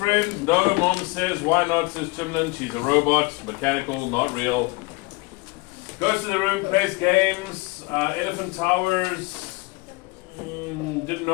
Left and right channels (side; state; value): right; quieter; 25.1 dB